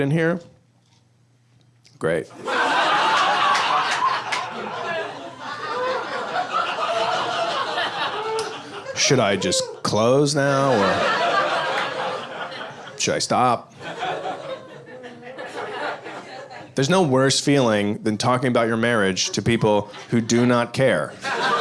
here? Great. Should I just close now, or should I stop? There's no worse feeling than talking about your marriage to people who do not care.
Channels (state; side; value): identical; both; correlation 1.00